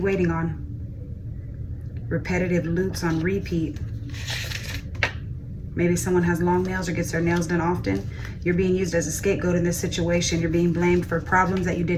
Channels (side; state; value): both; identical; correlation 1.00